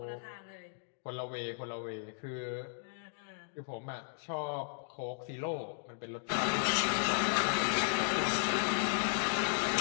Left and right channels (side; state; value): right; silent; digital silence